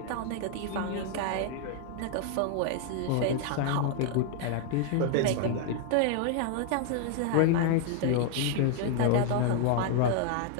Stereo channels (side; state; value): both; different; correlation 0.00